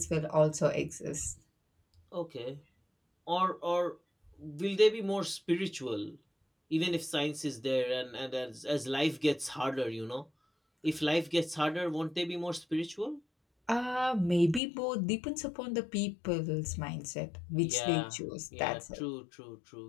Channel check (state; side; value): drops out; right; at 14.6 s